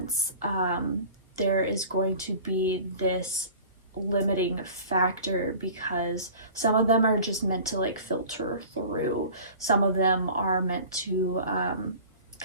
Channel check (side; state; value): both; inverted; correlation -0.42